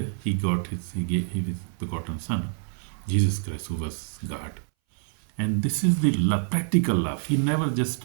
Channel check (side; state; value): left; silent; 61 dB below the other